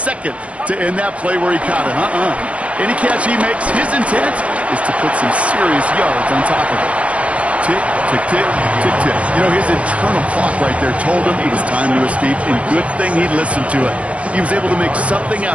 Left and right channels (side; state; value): left; late; 0.063 ms